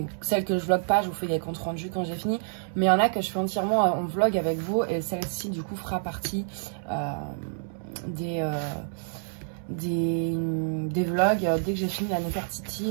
celles que je vlog pas, je vous fais des comptes rendus quand j'ai fini. Mais il y en a que je fais entièrement en vlog avec vous, et celle-ci du coup fera partie des vlogs. Dès que j'ai fini la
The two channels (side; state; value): left; silent; 59 dB below the other